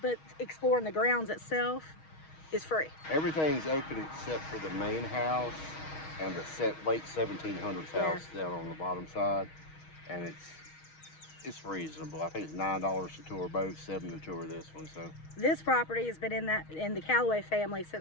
exploring the grounds itself is free. Everything's open except for the main house and the late 1700s house down on the bottom side, and it's reasonable. I think it's $9 to tour both, $7 to tour this one. So this property has been in the Callaway family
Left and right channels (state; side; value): late; right; 6.3 ms